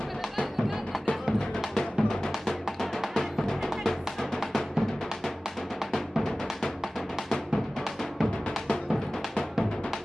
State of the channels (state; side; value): normal; both; correlation 0.97